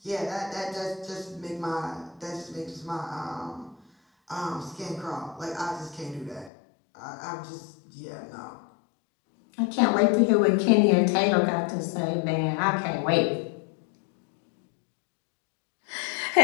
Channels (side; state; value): right; drops out; at 6.5 s